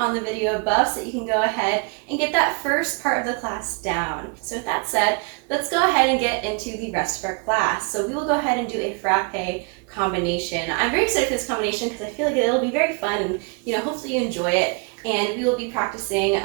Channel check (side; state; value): left; quieter; 33.1 dB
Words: the video above so that you can go ahead and get that first part of the class down. So with that said, let's go ahead and get into the rest of our class. So we will go ahead and do a frappe combination. I'm very excited for this combination because I feel like it'll be very fun and hopefully you enjoy it, and we will be practicing